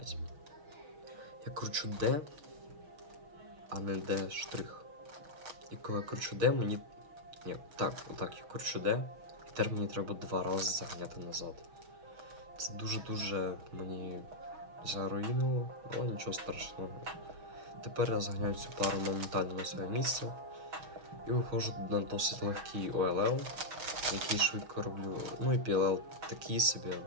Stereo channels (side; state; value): left; late; 6.2 ms